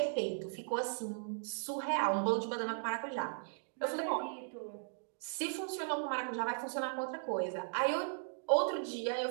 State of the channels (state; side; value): silent; left; digital silence